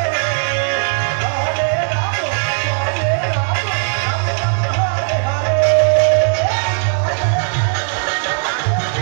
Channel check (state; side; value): silent; left; 65 dB below the other